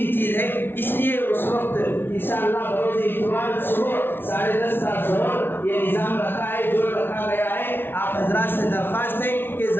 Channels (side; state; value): right; late; 0.11 ms